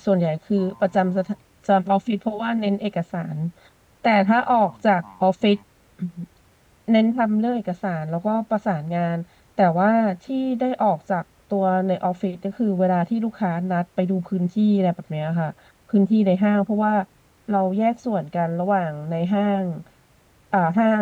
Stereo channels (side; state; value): both; identical; correlation 1.00